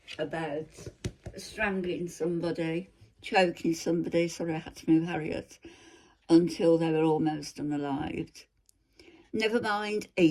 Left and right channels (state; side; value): identical; both; correlation 1.00